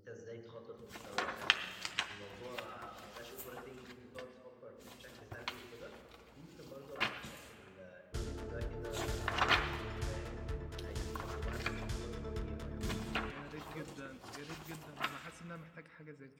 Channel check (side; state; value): both; identical; correlation 1.00